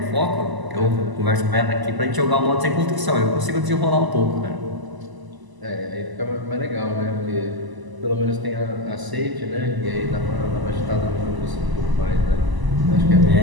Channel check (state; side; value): late; left; 1.0 ms